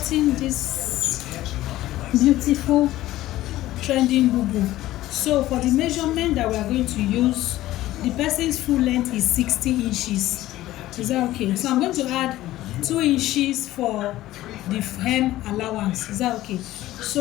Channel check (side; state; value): right; quieter; 15.5 dB